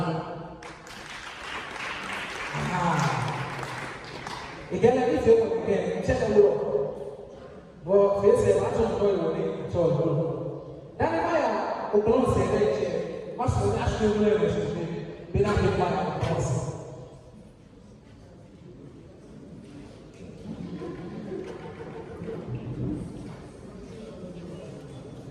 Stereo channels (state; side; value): identical; both; correlation 1.00